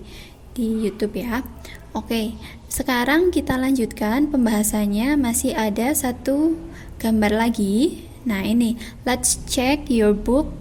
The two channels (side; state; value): both; identical; correlation 1.00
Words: di YouTube ya. Oke, sekarang kita lanjutkan pembahasannya. Masih ada satu gambar lagi. Nah ini, let's check your book